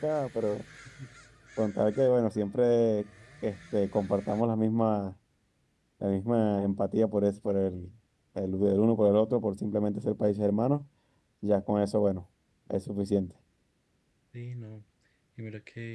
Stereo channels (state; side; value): identical; both; correlation 1.00